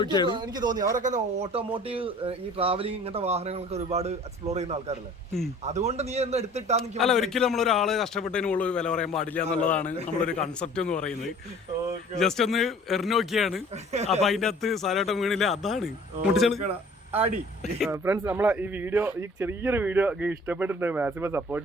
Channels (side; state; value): both; normal; correlation 0.50